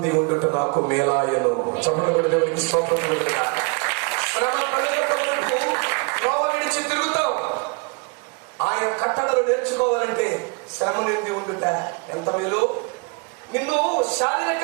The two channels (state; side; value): quieter; left; 33.7 dB